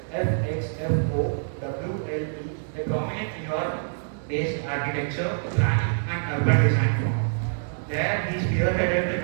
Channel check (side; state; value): left; silent; digital silence